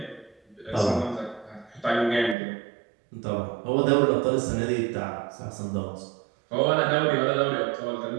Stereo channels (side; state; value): left; drops out; at 2.4 s